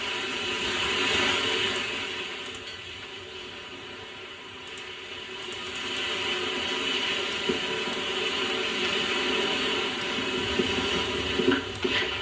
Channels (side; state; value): both; identical; correlation 1.00